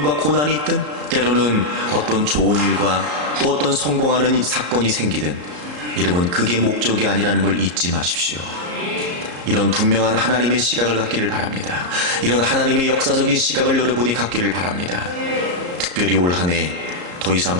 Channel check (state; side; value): late; left; 34 ms